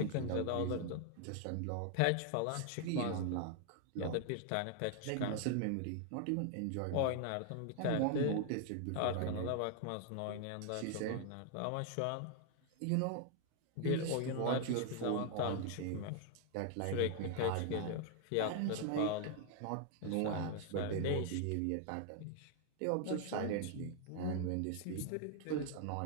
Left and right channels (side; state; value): both; different; correlation 0.00